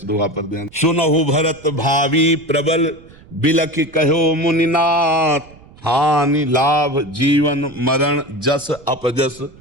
दोहा पर ध्यान। सुनहु भरत भावी प्रबल, बिलख कहो मुनिनाथ, हानि लाभ जीवन मरण जस अपजस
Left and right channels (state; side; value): noise; right; rumble, 24 dB below the sound